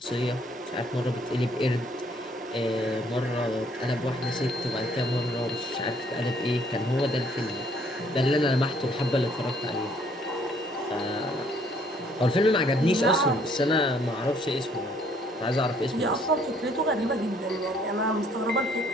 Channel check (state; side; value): normal; both; correlation 0.64